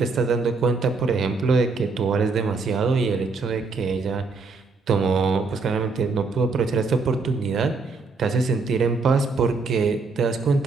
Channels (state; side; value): quieter; left; 4.2 dB